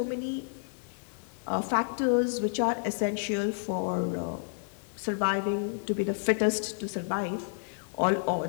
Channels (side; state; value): right; silent; 58 dB below the other